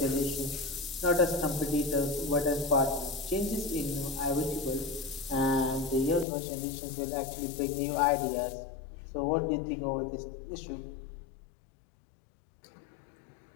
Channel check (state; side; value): drops out; right; at 6.2 s